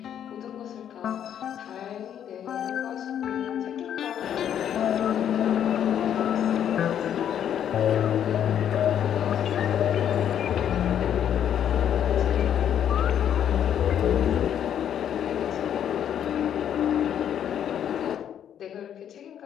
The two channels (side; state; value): right; quieter; 9.6 dB